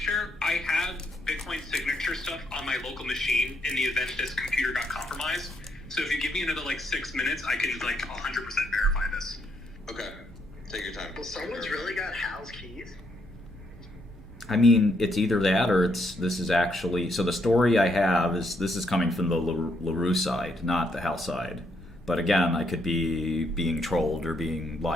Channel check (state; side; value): normal; both; correlation 0.74